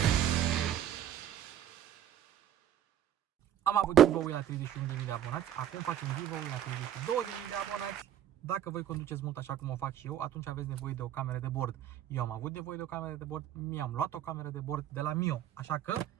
Am avut giveaway la 31.000 de abonați, acum facem giveaway la 32.000 de abonați. Dacă voi conduceți mult așa cum o fac și eu, atunci aveți nevoie de o cameră de bord. Eu am avut nevoie de o cameră de bord, mi-am luat o cameră de bord de la Mio. Așa că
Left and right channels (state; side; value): quieter; left; 10.6 dB